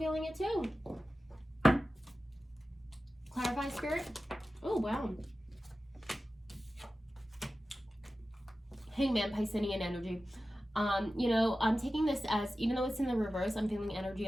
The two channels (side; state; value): both; normal; correlation 0.95